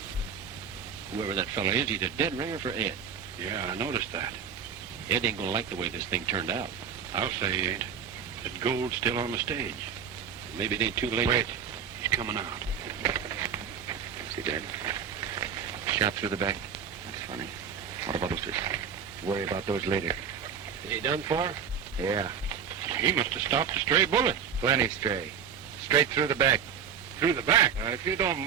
Whoever that fella is, he's a dead ringer for Ed. Yeah, I noticed that. Ed ain't gonna like the way this thing turned out. I'll say he ain't. That gold's still on the stage. Maybe it ain't too late. Wait. He's coming out. See that? Shot through the back. That's funny. What about those fish? Worry about those later. Is he done for? Yeah, He must have stopped a stray bullet. plenty stray. Straight through the back. Through the back. If you don't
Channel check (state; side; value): quieter; left; 7.3 dB